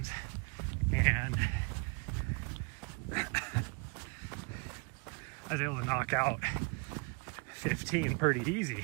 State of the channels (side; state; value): left; quieter; 32.6 dB